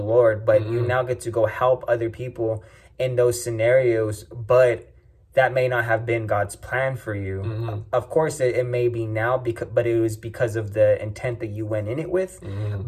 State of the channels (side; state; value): both; identical; correlation 1.00